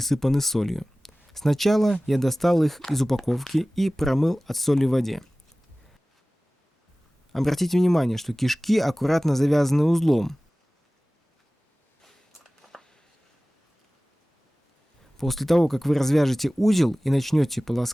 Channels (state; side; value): normal; both; correlation 0.98